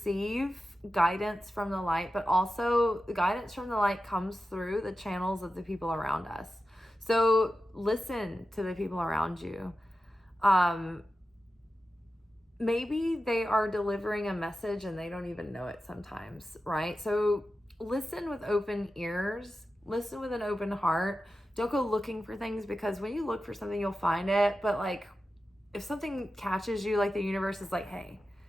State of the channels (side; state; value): both; normal; correlation 0.92